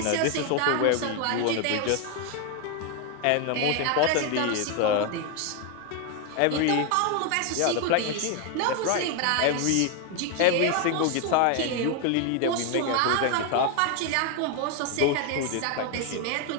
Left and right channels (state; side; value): different; both; correlation 0.01